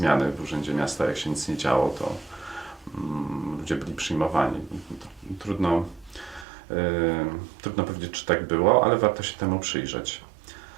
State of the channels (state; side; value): drops out; left; at 6.5 s